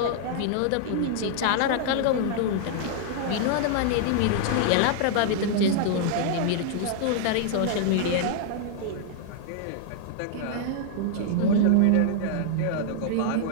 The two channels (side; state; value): both; different; correlation -0.01